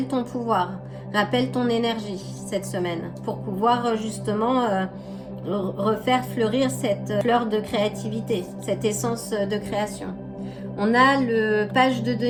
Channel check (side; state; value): both; identical; correlation 1.00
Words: ton pouvoir, rappelle ton énergie cette semaine pour pouvoir justement refaire fleurir cette fleur de créativité, cette essence de création. On a le page de